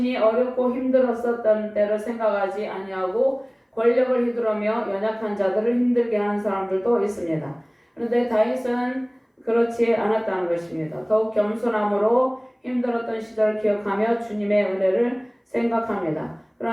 어렵고 힘들었었던 때를 생각하지 아니하고 권력을 휘두르며 연약한 자들을 힘들게 하는 사람들도 있습니다. 그런데 다윗은 그렇지 않았다는 것입니다. 더욱 겸손함으로 힘들었던 시절을 기억하며 주님의 은혜를 생각합니다.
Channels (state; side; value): identical; both; correlation 1.00